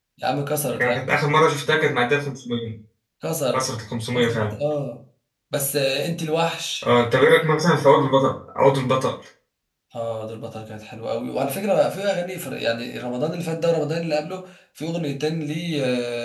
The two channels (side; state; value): both; identical; correlation 1.00